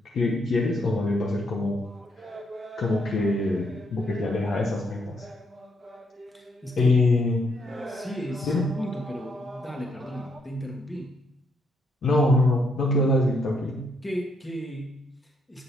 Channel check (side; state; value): both; normal; correlation 0.74